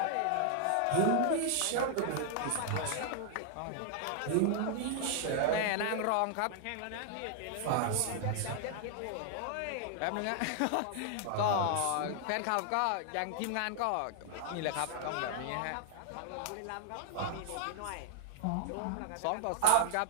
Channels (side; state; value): both; different; correlation 0.00